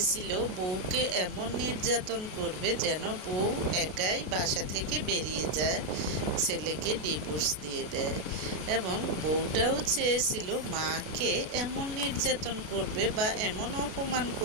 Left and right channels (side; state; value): left; late; 33 ms